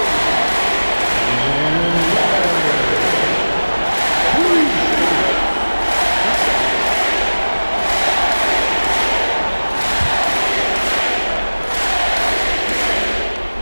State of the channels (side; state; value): both; inverted; correlation -1.00